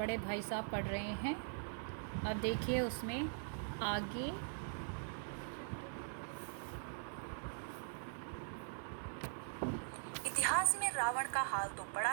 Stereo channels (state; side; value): silent; left; digital silence